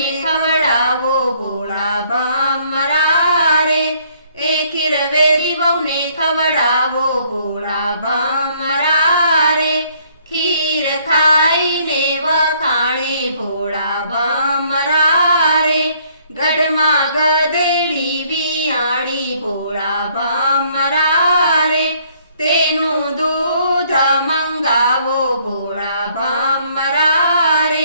ખવડાવો ભોળા ભમરા રે. એ ખીર વેરી વહુને ખવડાવો ભોળા ભમરા રે. ખીર ખાઈને વખાણે ભોળા ભમરા રે. ગઢમાં ગધેડી વિયાણી ભોળા ભમરા રે. તેનું દૂધ મંગાવો ભોળા ભમરા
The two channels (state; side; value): inverted; both; correlation -0.64